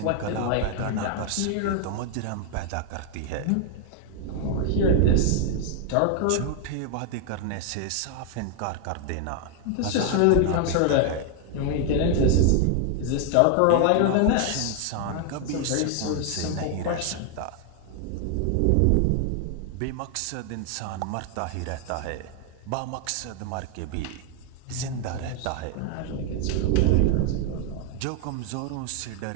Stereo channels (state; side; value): different; both; correlation 0.00